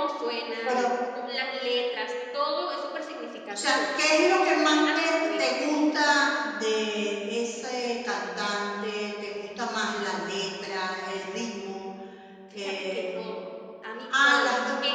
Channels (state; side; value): identical; both; correlation 1.00